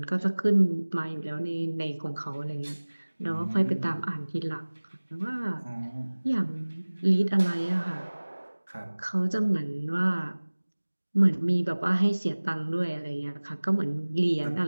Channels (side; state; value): both; inverted; correlation -1.00